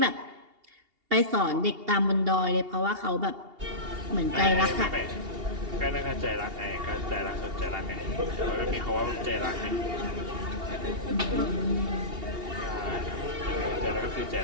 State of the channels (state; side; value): late; left; 2.8 ms